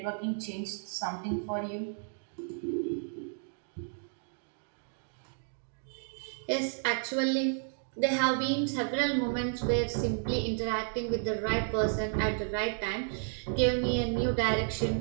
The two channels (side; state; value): left; silent; 56 dB below the other